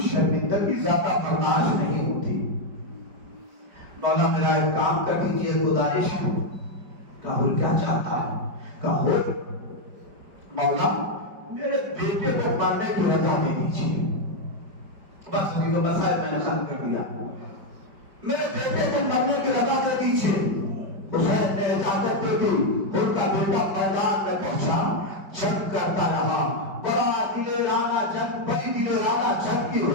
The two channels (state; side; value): late; left; 5.1 ms